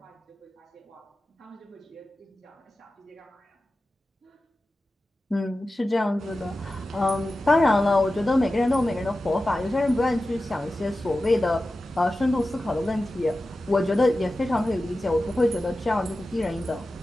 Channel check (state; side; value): normal; both; correlation 0.94